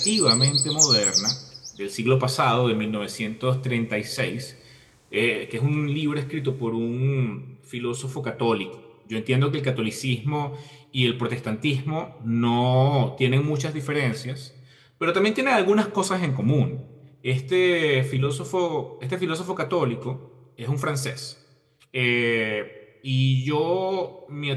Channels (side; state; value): both; identical; correlation 1.00